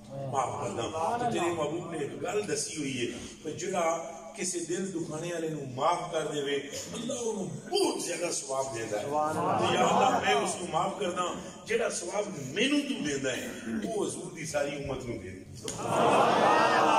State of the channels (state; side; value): identical; both; correlation 1.00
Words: تو تیرے محبوب نے ایک گل دسی ہوئی ہے کہ جڑا کسی دل دکھانے والے نو معاف کر دے اللہ انہوں بہت زیادہ ثواب دیتا ہے، یا اللہ میں اس کو معاف کردا جڑا ثواب مینوں تو دیندا ہے وہ حضور دی ساری امت نو دے۔